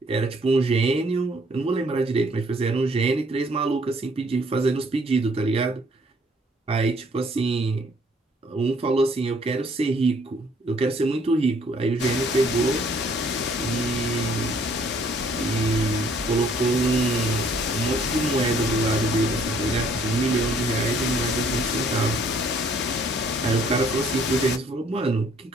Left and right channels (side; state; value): both; normal; correlation 0.62